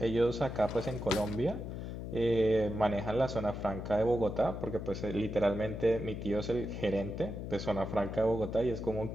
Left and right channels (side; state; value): left; noise; hum, 7 dB below the sound